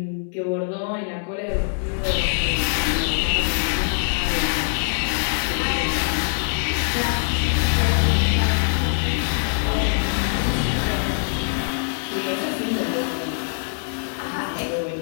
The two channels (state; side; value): silent; right; digital silence